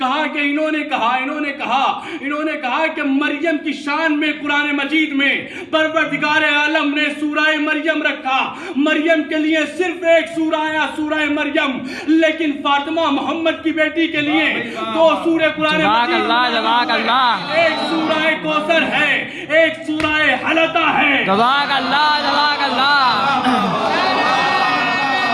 کہ انہوں نے کہا کہ مریم کی شان میں قرآن مجید میں پروردگار عالم نے سورہ مریم رکھا، مریم کے لیے صرف ایک سورہ آیا، سورہ مریم، لیکن فاطمہ محمد کی بیٹی کے لیے دو سورہ قرآن مجید، جزاک اللہ، ایک سورہ کوثر ہے، ایک سورہ حلقہ ہے۔ جزاک اللہ۔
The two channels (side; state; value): both; identical; correlation 1.00